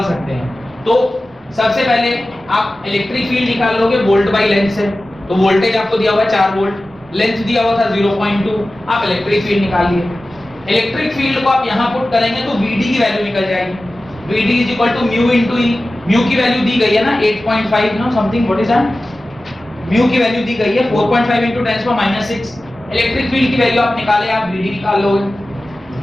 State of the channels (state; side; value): normal; both; correlation 0.95